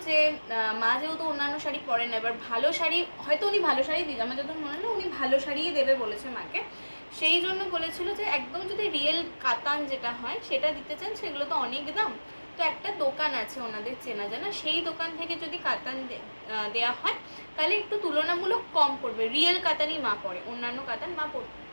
যে মা যেহেতু অন্যান্য শাড়ি পরেন না, এবার ভালো শাড়ি হয়তো উনি ভালো শাড়ি দিন, আমার যত মনে হলো উনি ভালো শাড়িই দেবে বলেছে মাকে। সেই জন্য বলেছিল যে একদম যদি রিয়েল কাতান যেটা হয় সেটা দিতে চান, সেগুলো তো অনেক দাম। তো একটা দোকান আছে ওনাদের চেনা জানা, সেই দোকান থেকে যদি কাতান দেওয়া হয় তাহলে একটু তুলনামূলক কম পড়বে। রিয়েল কাতানই মা পরে, অন্যান্য কাতান মা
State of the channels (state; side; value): inverted; both; correlation -1.00